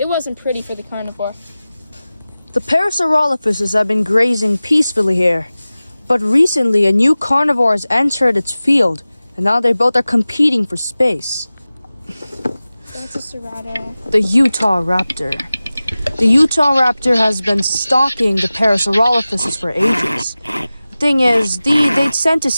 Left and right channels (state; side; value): inverted; both; correlation -0.97